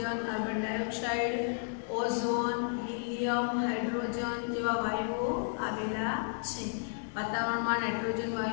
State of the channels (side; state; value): right; silent; digital silence